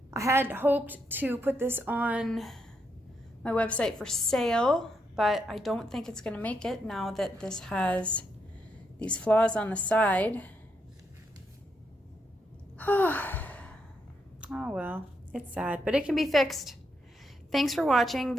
I had hoped to put this on my website for sale, but I don't think it's going to make it now that this has these flaws on the side. Oh well, it's sad, but it can be fixed. Thanks for watching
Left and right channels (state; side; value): normal; both; correlation 0.80